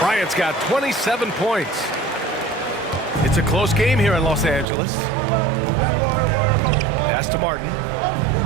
got 27 points. It's a close game here in Los Angeles. Pass to Martin.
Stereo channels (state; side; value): drops out; left; at 4.7 s